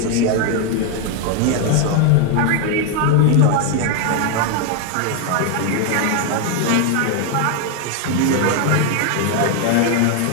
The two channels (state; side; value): different; both; correlation 0.01